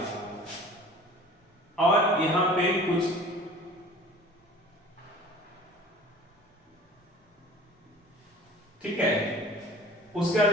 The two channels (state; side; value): normal; both; correlation 0.45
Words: और यहां पे कुछ ठीक है, उसके बाद